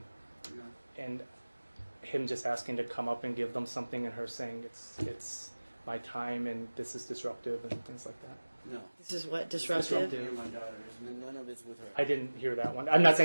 him just asking to come up and give them something, and her saying it's my time and this is disruptive and things like that. No. This is what disruptive. Me and my daughter. None of it's with her. I didn't hear that one. I'm not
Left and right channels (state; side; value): inverted; both; correlation -1.00